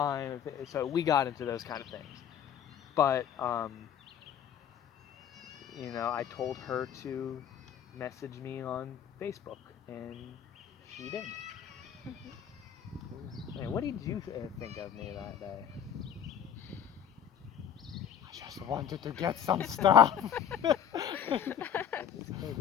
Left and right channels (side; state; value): right; quieter; 8.9 dB